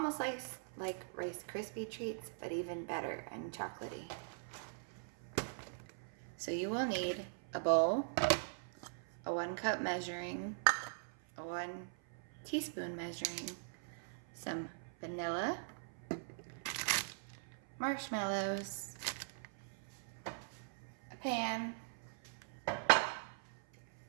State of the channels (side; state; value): left; silent; 50 dB below the other